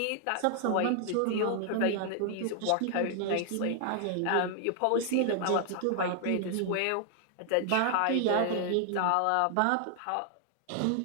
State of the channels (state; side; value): different; both; correlation 0.00